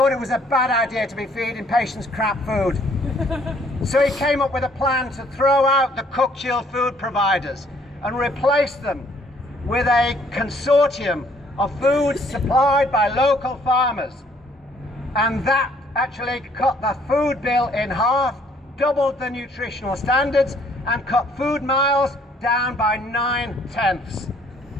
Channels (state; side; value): normal; both; correlation 0.62